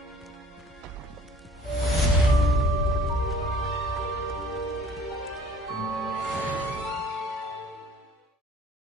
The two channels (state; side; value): normal; both; correlation 0.52